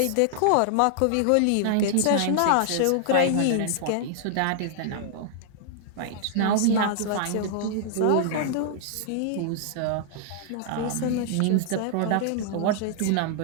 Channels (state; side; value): different; both; correlation -0.01